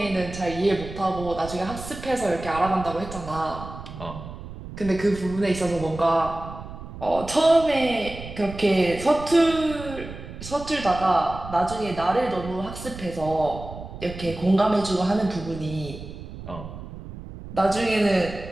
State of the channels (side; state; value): right; noise; rumble, 12 dB below the sound